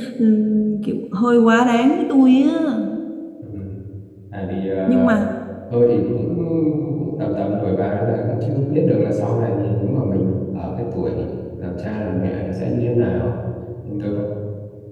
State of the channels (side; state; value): both; identical; correlation 1.00